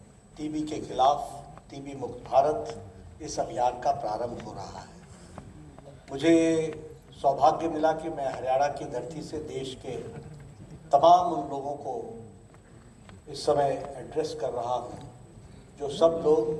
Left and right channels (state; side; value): identical; both; correlation 1.00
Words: टीबी के खिलाफ टीबी मुक्त भारत इस अभियान का प्रारंभ हो रहा है। मुझे सौभाग्य मिला कि मैं हरियाणा की धरती से देश के तमाम उन लोगों को इस समय एड्रेस कर रहा हूँ जो सब लोग